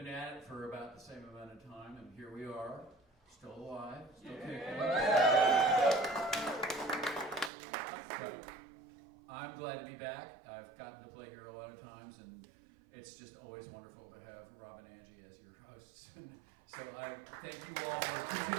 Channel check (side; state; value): left; drops out; at 7.5 s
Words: at it for about the same amount of time, and here we are, still alive, still kicking. But I'm glad to be back. I've gotten to play here a lot of times, and it's just always wonderful to have Rob and Angie as your hosts. So I thank you all for